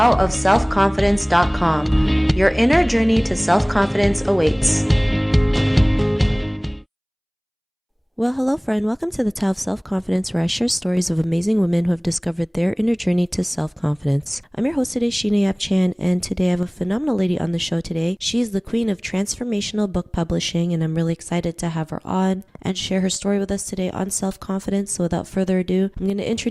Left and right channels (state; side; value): identical; both; correlation 1.00